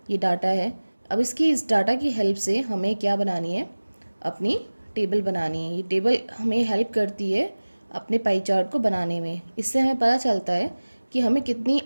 ये डाटा है। अब इस डाटा की हेल्प से हमें क्या बनानी है, अपनी टेबल बनानी है। ये टेबल हमें हेल्प करती है अपने पाई चार्ट को बनाने में। इससे हमें पता चलता है कि हमें कितनी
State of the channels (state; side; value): inverted; both; correlation -1.00